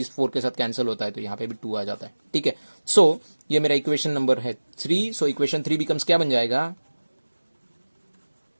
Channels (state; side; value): inverted; both; correlation -1.00